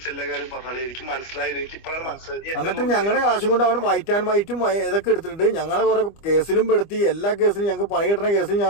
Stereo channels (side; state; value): right; late; 25 ms